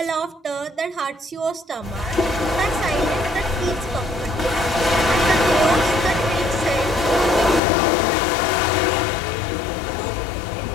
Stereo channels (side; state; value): right; drops out; at 7.6 s